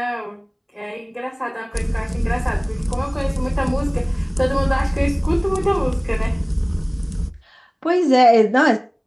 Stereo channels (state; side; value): identical; both; correlation 1.00